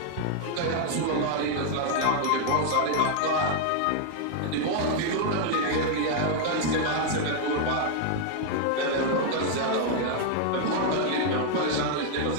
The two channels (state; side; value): different; both; correlation 0.00